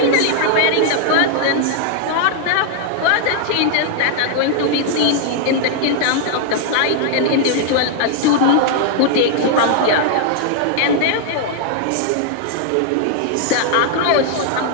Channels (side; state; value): both; different; correlation -0.01